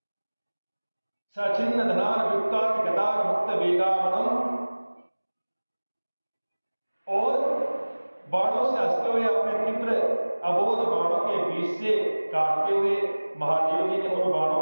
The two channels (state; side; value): inverted; both; correlation -1.00